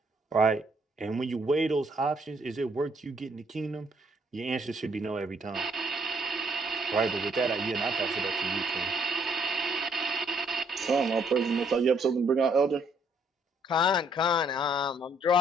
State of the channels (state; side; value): normal; both; correlation 0.67